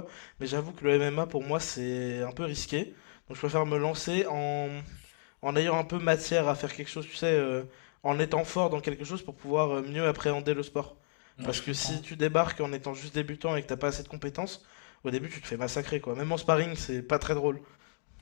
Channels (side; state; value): right; silent; digital silence